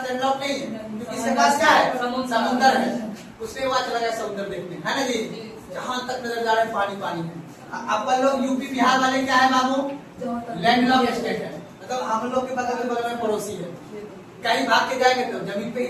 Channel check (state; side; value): identical; both; correlation 1.00